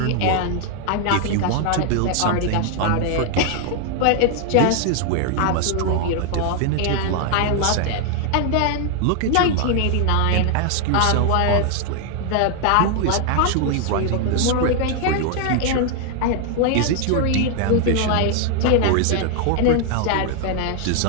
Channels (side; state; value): both; different; correlation 0.00